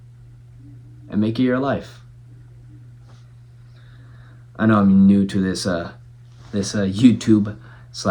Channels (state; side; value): identical; both; correlation 1.00